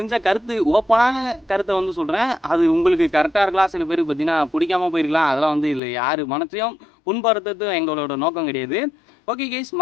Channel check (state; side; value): drops out; right; at 5.8 s